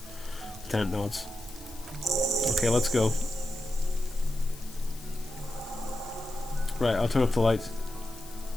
Lieutenant nods. Okay, let's go. Right, I'll turn off the lights.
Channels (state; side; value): noise; left; hiss, 18 dB below the sound